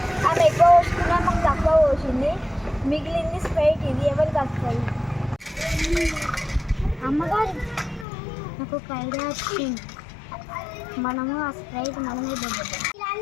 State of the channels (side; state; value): right; drops out; at 8.1 s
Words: ఆమె ఎక్కువ పోసుకున్నా, మాకు తక్కువ పోసింది. మిగిలింది స్ప్రైట్. ఇది ఎవరికి వస్తుంది? అమ్మగారు నాకు ఒక ఐడియా వచ్చింది. మనము ఆ స్ప్రైట్ మనమే దొబ్బుతాం.